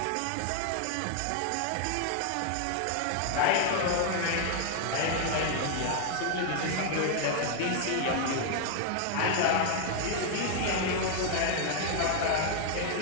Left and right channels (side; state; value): both; different; correlation 0.00